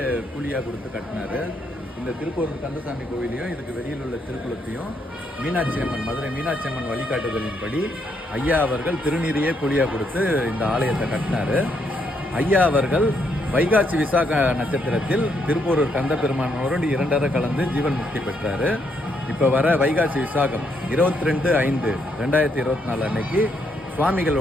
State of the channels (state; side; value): normal; both; correlation 0.75